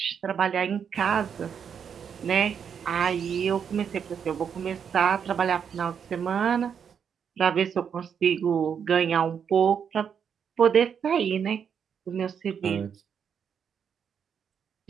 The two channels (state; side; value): quieter; left; 7.4 dB